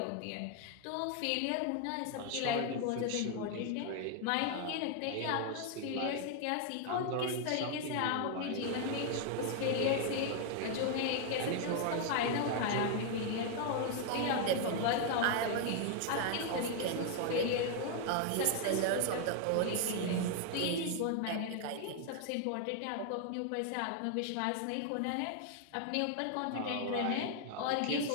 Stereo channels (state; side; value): different; both; correlation 0.00